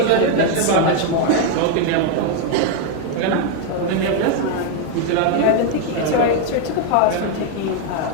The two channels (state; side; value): different; both; correlation 0.01